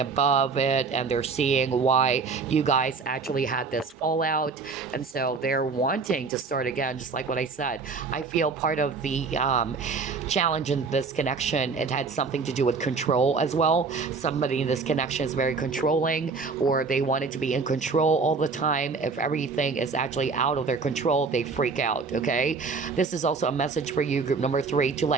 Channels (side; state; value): left; quieter; 4.7 dB